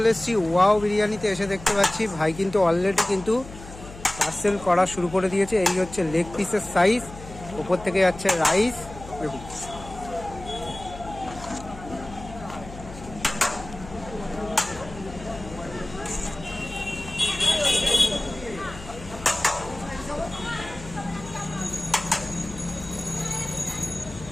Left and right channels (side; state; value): left; noise; hum, 15 dB below the sound